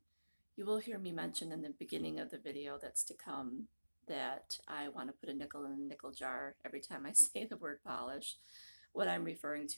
You will hear me mention in the beginning of the video that's to come that I want to put a nickel in a nickel jar every time I say the word polish. What I'm referring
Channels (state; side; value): inverted; both; correlation -1.00